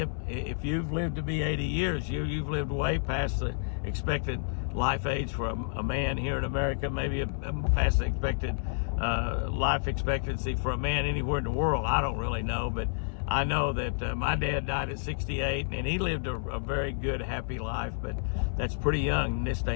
if you've lived to be 80 years, you've lived way past the expected life age for a man here in America, maybe past the expected life expectancy for a man anywhere in the world. I don't really know, but I know that my dad died at 68, and he lived a very good, happy life, but that's pretty young in this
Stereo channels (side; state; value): right; silent; 58 dB below the other